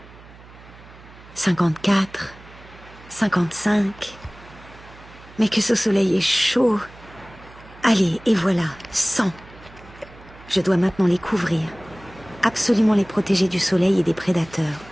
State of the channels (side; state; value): right; noise; hum, 21 dB below the sound